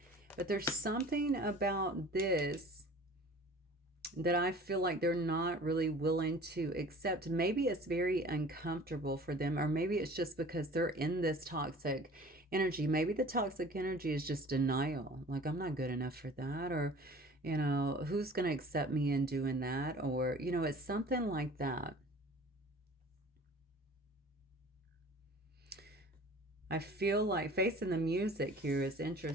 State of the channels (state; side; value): normal; both; correlation 0.45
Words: But there's something about this that I feel like they're not really willing to accept. Maybe it's very uncomfortable for them, or maybe it's just because they're in this toxic energy. Maybe the toxic energy is just denial. Like, I'm not good enough for that, or, you know, who's going to accept me in doing that? Or, you know, it's something like that. I feel like facing the music here is